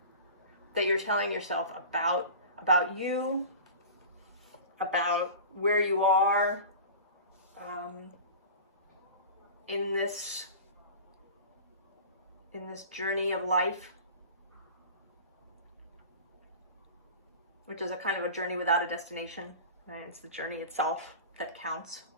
that you're telling yourself about you, about where you are in this journey of life? Which is a kind of a journey without a destination, right? It's the journey itself that counts.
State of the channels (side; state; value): both; inverted; correlation -0.36